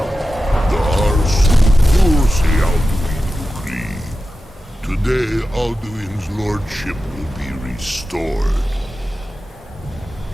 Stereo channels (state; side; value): normal; both; correlation 0.92